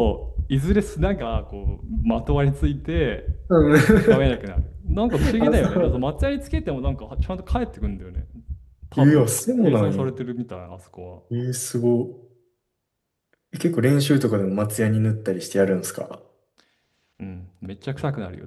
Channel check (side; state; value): both; identical; correlation 1.00